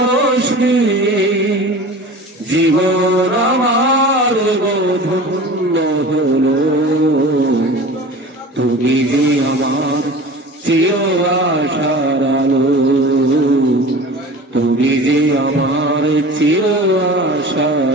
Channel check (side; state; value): both; normal; correlation 0.37